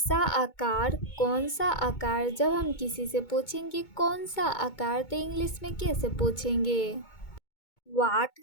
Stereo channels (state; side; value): late; right; 2.2 ms